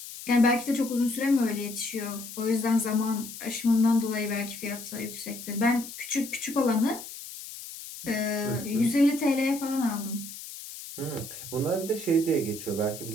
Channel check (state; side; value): noise; left; hiss, 12 dB below the sound